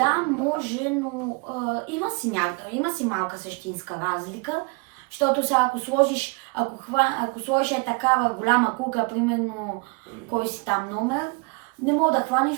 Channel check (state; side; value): quieter; left; 30.0 dB